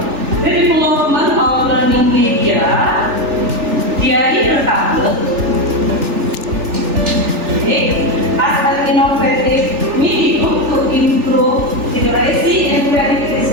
The Development of Learning Media, Diari Berkabut. As an innovative medium to improve literacy and creativity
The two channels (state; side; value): late; left; 3.4 ms